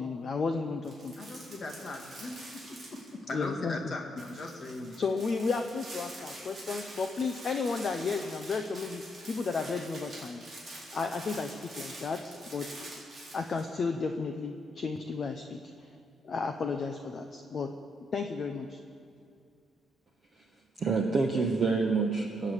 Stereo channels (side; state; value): both; normal; correlation 0.76